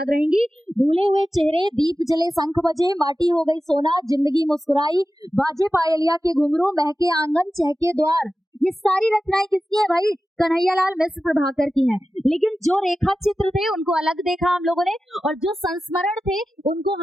रहेंगी। भूले हुए चेहरे, दीप जले शंख बजे, माटी हो गई सोना, जिंदगी मुस्कुराई, बाजे पायलिया के घुंघरू, महके आंगन चहके द्वार, ये सारी रचनाएं किसकी है भाई? कन्हैयालाल मिश्र प्रभाकर की हैं। लेकिन जो रेखा चित्र थे उनको अलग देखा हम लोगों ने, और जो संस्मरण थे उनको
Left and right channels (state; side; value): normal; both; correlation 0.93